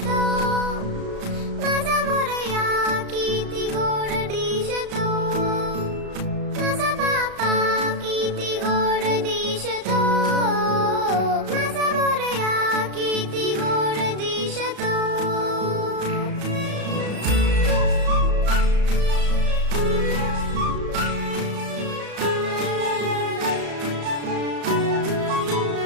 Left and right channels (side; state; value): left; late; 34 ms